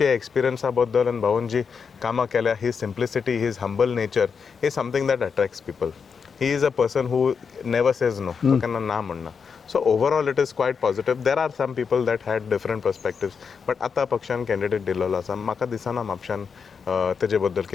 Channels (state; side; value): quieter; right; 6.0 dB